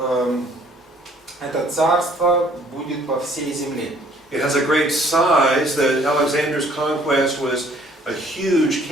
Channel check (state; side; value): normal; both; correlation 0.59